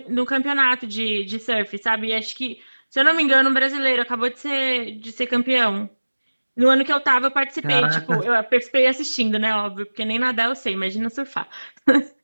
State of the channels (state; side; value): inverted; both; correlation -1.00